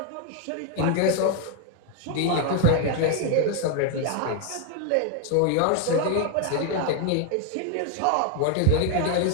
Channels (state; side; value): different; both; correlation 0.01